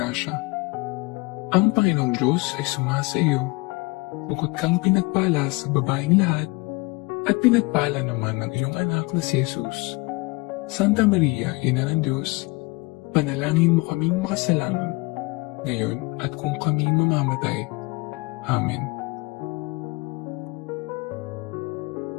Ang Panginoong Diyos ay sumasa iyo. Bukod kang pinagpala sa babaeng lahat, at pinagpala naman ng iyong anak na si Jesus. Santa Maria, Ina ng Diyos, panalangin mo kaming makasalanan, ngayon at kung kami mamamatay. Amen.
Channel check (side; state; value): right; quieter; 26.1 dB